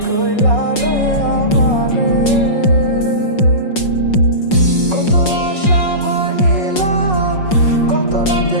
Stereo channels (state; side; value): late; right; 5.5 ms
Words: কইলা রে আমারে, কত আশা ভাঙিলা, কত রাতে